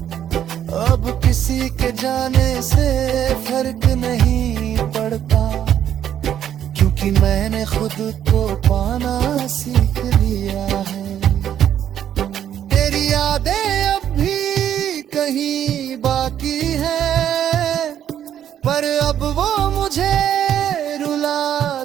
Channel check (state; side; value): quieter; left; 10.2 dB